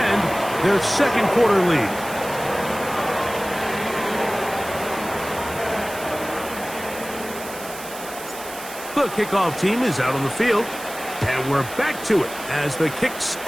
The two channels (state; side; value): noise; right; hiss, 13 dB below the sound